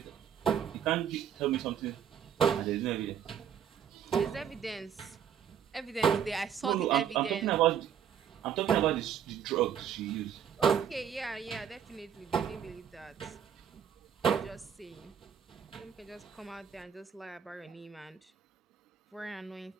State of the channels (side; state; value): left; quieter; 8.4 dB